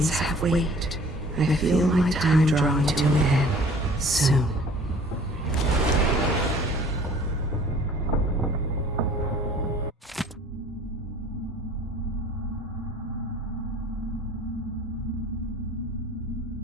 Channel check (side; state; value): both; normal; correlation 0.50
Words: have weight. I feel my time drawing to an end soon.